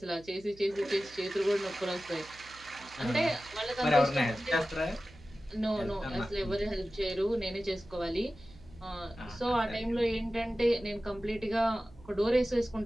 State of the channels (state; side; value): noise; right; hum, 22 dB below the sound